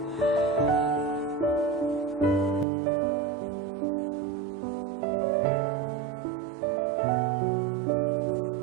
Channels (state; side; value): drops out; left; at 2.7 s